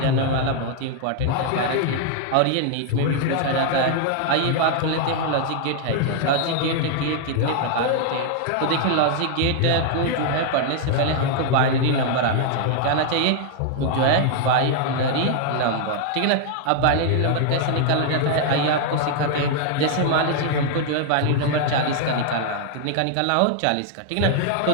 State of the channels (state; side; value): different; both; correlation 0.00